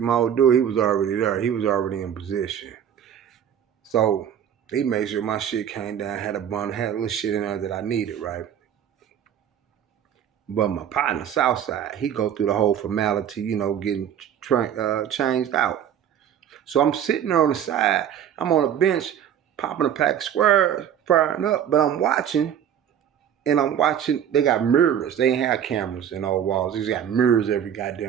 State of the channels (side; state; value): left; quieter; 9.4 dB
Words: old dude, he was already there. He was already in position. So he made sure my shit came down, had a bundle, had a little shit in there that I needed, right? But my partner, Southside, he go through the whole formality, getting changed out. So I'm sitting there on the side. I'm on a bench, popping a pack of squares, firing up, but I'm watching, and I'm watching. They got mirrors. They ain't have cameras in all walls. They just got mirrors every